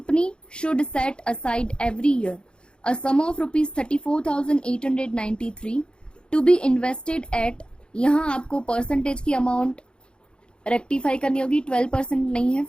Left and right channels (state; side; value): late; right; 0.052 ms